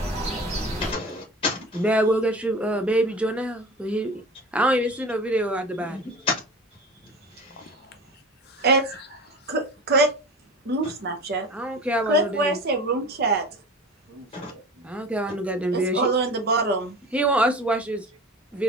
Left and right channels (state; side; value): normal; both; correlation 0.34